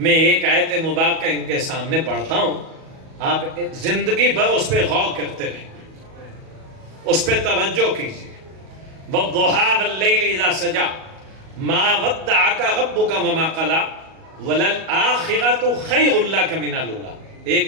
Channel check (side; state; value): left; late; 37 ms